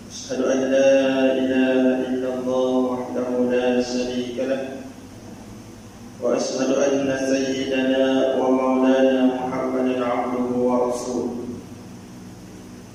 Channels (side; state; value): both; identical; correlation 1.00